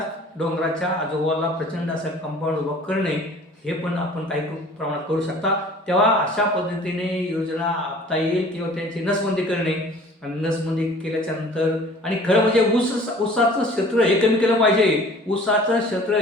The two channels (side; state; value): both; normal; correlation 0.48